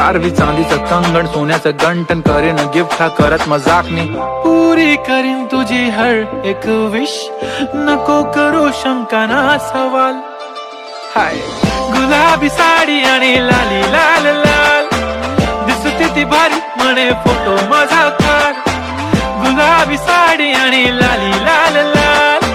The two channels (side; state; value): both; identical; correlation 1.00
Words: चांदीचं कंगण सोन्याचं गंटन. करीन गिफ्ट हा करत मजाकनी, पुरी करीन तुझी हर एक विश. नको करू शंका ना सवाल. हाय गुलाबी साडी आणि लाली लाल लाल, दिसते ती भारी म्हणे फोटो माझा काढ. गुलाबी साडी आणि लाली लाल लाल,